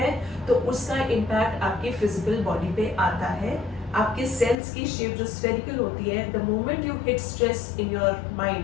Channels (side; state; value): right; drops out; at 4.5 s